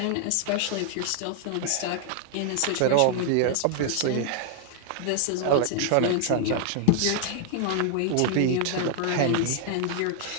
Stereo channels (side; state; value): both; different; correlation -0.01